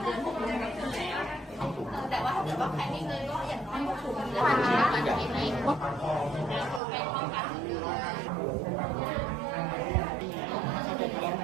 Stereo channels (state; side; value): drops out; left; at 6.8 s